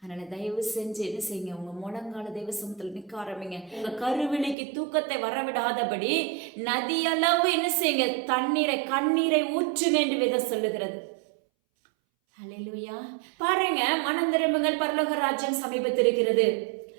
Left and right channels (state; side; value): drops out; left; at 4.5 s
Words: தயவு செஞ்சு என்ன செய்யுங்க, உங்க முழங்கால தேவ சமூகத்துல நிற்க ஆரம்பிங்க. உங்க கருவிழிக்கு தூக்கத்தை வரவிடாதபடி நதியளவு என்ன செய்யுங்க, கண்ணீரை ஊற்றுங்க என்று வேதம் சொல்லுகிறது. ஹல்லேலூயா. பாருங்க, மனம் திரும்புங்கள், பரலோக ராஜ்யம் சமீபத்திருக்கிறது.